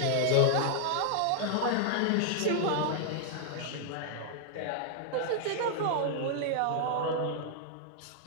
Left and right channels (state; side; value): different; both; correlation 0.00